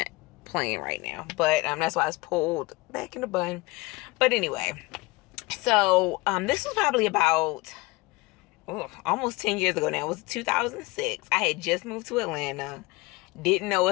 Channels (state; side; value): quieter; right; 23.1 dB